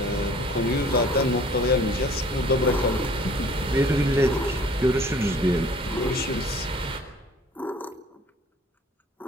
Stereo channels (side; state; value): both; normal; correlation 0.52